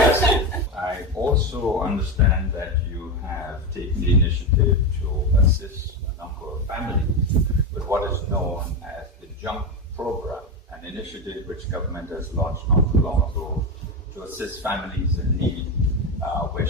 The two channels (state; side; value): normal; both; correlation 0.16